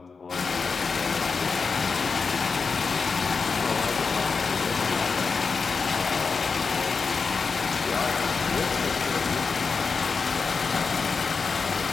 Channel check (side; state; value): right; quieter; 5.0 dB